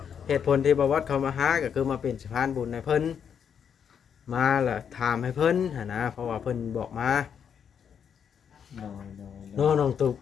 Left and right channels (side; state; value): right; quieter; 7.7 dB